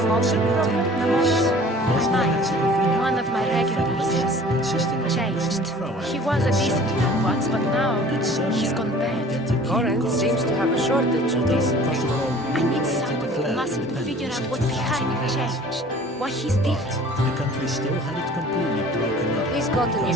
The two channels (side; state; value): both; normal; correlation 0.48